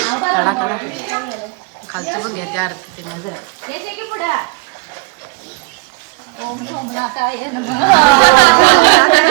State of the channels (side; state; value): left; quieter; 27.5 dB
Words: खालचं बघ घ्या त्या आरती